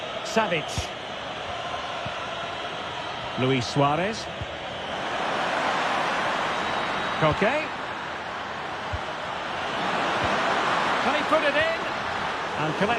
Savic. Luis Suarez. Koke. Can he put it in? And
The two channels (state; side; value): identical; both; correlation 1.00